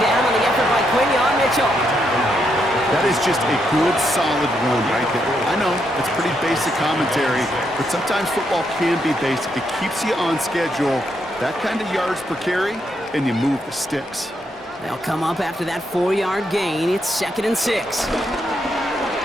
down on the effort by Quinion Mitchell. That is just a good, solid run right there. I know, it's pretty basic commentary, but sometimes football can be basic. It keeps you on schedule. That kind of yards per carry, and you move the sticks. They'll come up after that 4-yard gain. It's 2nd and 6.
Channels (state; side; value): normal; both; correlation 0.78